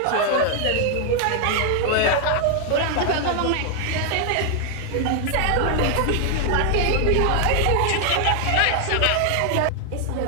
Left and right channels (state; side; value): different; both; correlation 0.00